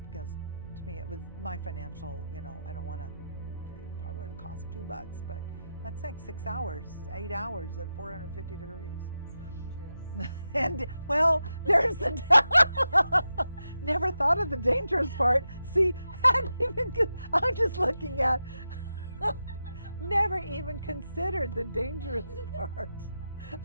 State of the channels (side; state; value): both; inverted; correlation -0.89